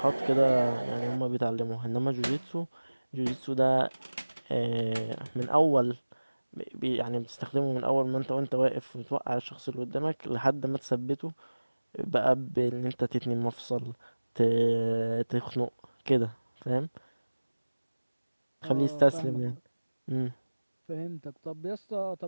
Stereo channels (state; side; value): inverted; both; correlation -1.00